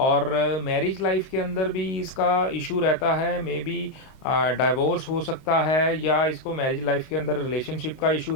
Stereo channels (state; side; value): late; right; 30 ms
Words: मैरिज लाइफ के अंदर भी इसका इशू रहता है, मे बी डाइवोर्स हो सकता है, या इसको मैरिज लाइफ के अंदर रिलेशनशिप का इशू